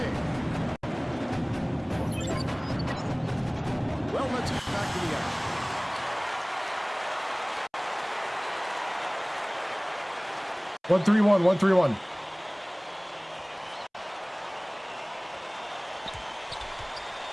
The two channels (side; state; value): both; identical; correlation 1.00